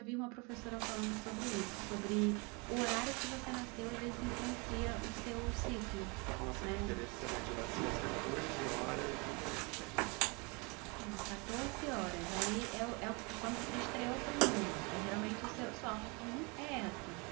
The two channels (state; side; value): quieter; left; 29.9 dB